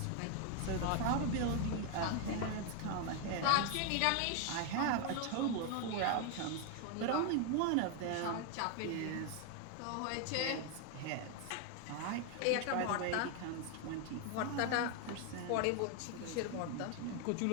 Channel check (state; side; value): different; both; correlation 0.01